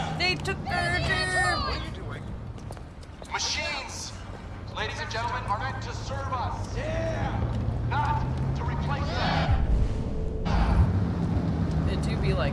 They took their job. Machines, ladies and gentlemen, are meant to serve us. Not to replace us. It do be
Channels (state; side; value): identical; both; correlation 1.00